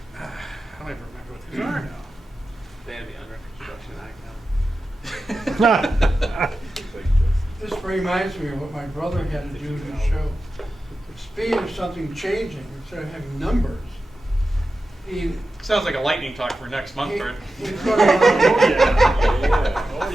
I don't even remember what these are now. They have the under construction icon. This reminds me of what my brother had to do to show the speed of something changing instead of having numbers. He Sounds like a lightning talk for next month, Bert. put on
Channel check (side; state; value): both; normal; correlation 0.92